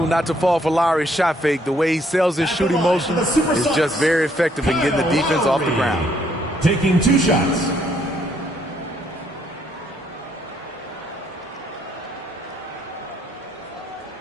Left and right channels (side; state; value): both; normal; correlation 0.69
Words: not to fall for Lowry's shot fake. The way he sells his shooting motion is just very effective in getting the defense off the ground. Taking 2 shots.